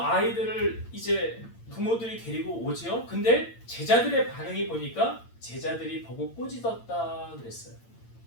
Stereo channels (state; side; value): late; right; 8.8 ms